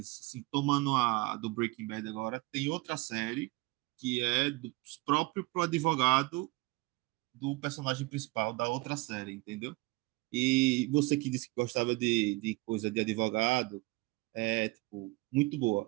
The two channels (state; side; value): quieter; left; 22.9 dB